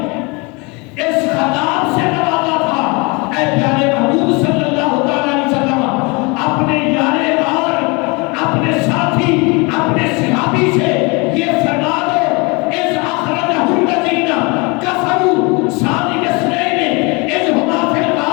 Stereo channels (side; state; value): right; quieter; 28.5 dB